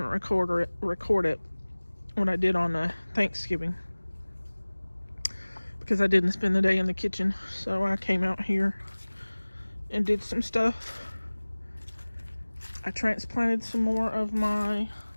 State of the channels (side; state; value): both; inverted; correlation -1.00